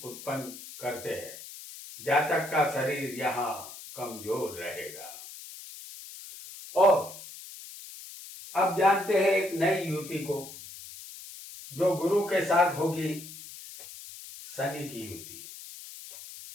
उत्पन्न करते हैं। जातक का शरीर यहाँ कमजोर रहेगा। और अब जानते हैं एक नई युति को जो गुरु के साथ होगी, शनि की युति।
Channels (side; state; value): left; noise; hiss, 14 dB below the sound